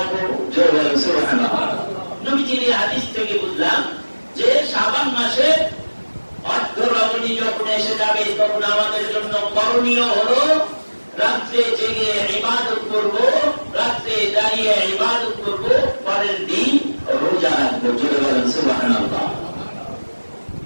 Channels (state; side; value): inverted; both; correlation -1.00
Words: সুবহানাল্লাহ। নবীজির হাদিস থেকে বুঝলাম যে শাবান মাসে অর্ধ রজনী যখন এসে যাবে তখন আমাদের জন্য করণীয় হলো রাত্রে জেগে ইবাদত করব, রাত্রে দাঁড়িয়ে ইবাদত করব, পরের দিন রোজা রাখবো। জোরে বলেন সুবহানাল্লাহ।